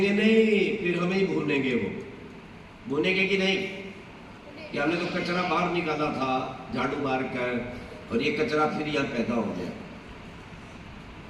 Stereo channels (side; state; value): both; identical; correlation 1.00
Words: नहीं, फिर हमें ही भूनेंगे। वो भूनेंगे कि नहीं कि हमने तो कचरा बाहर निकाला था झाड़ू मार कर, और ये कचरा फिर यहां पैदा हो गया।